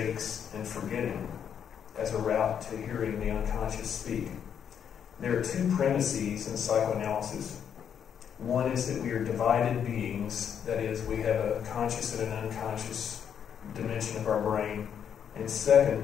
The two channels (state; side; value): quieter; right; 8.3 dB